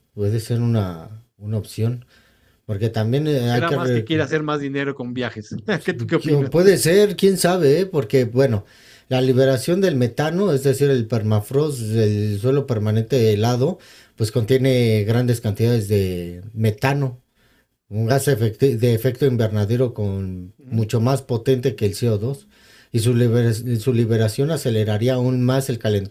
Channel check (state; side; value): identical; both; correlation 1.00